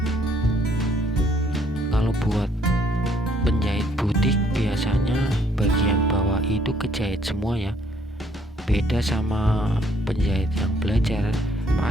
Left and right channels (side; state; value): both; normal; correlation 0.65